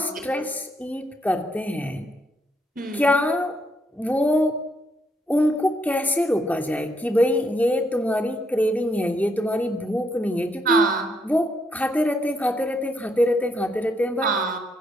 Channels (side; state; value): both; normal; correlation 0.75